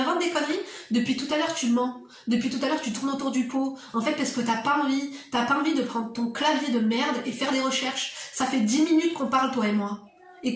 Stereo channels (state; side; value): identical; both; correlation 1.00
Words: des conneries. Depuis tout à l'heure, tu mens. Depuis tout à l'heure, tu tournes autour du pot. En fait, parce que t'as pas envie de prendre ton clavier de merde et faire des recherches. Ça fait 10 minutes qu'on parle, toi et moi. Et